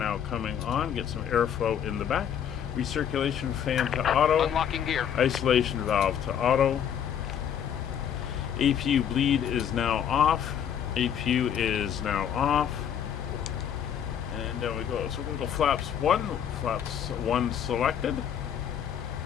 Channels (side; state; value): right; quieter; 8.9 dB